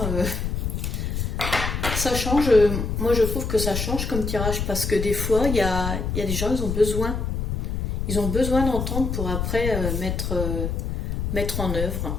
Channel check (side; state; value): left; noise; rumble, 2 dB below the sound